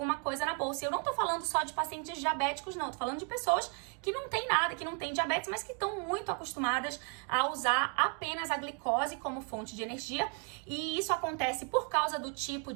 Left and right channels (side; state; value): left; quieter; 37.3 dB